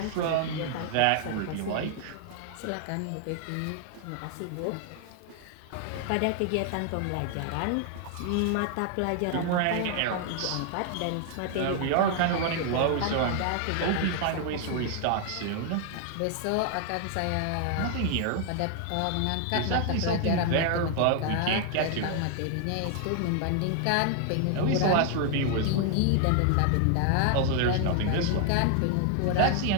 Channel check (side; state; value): both; different; correlation 0.00